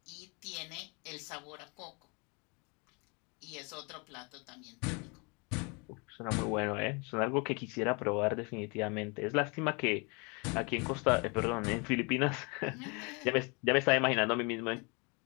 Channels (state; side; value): quieter; right; 31.2 dB